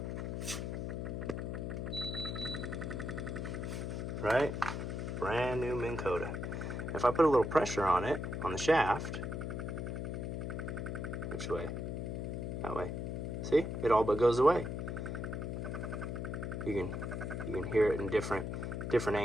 Right? Brand new Minn Kota. If I put a little pressure on it, on the shaft, which way? That way. See? It all but goes away. You can hear it in different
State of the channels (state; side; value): noise; left; hum, 3 dB below the sound